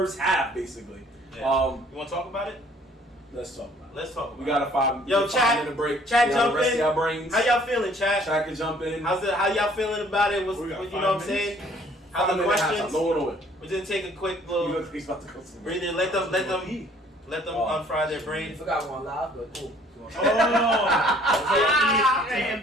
half, basically. Yeah. You want to talk about it? Let's talk about it. Let's talk about We got a 5 Yo, chat. 5-minute break. Chat, We gotta jump rest in. Our brains. How y'all feeling, chat? Chat can jump in. How y'all feeling about it? We got You 5 know what I'm minutes. saying? How the 5-minute halftime. questions? No one away. We didn't take a quick You little look like he's about to go somewhere. breather. Let them Oh. unfry their I brain. forgot one live, but cool. We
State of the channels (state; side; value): normal; both; correlation 0.58